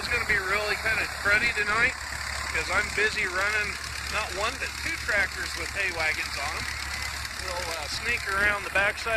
going to be really kind of cruddy tonight because I'm busy running not one but two tractors with hay wagons on them. We'll sneak around the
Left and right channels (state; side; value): identical; both; correlation 1.00